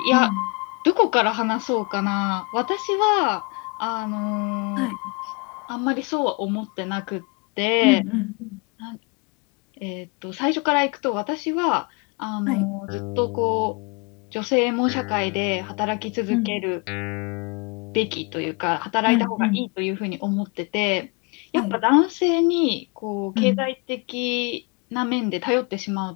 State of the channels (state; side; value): quieter; right; 31.0 dB